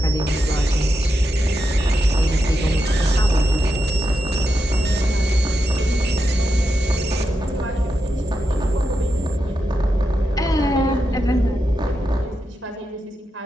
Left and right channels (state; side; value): normal; both; correlation 0.87